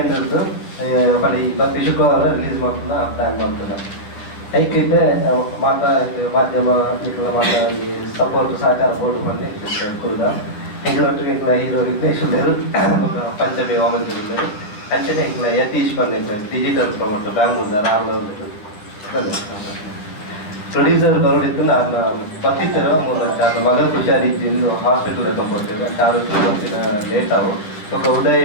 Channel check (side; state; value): right; late; 9.8 ms